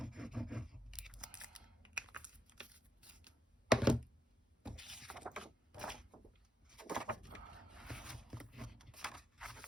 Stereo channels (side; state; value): both; normal; correlation 0.78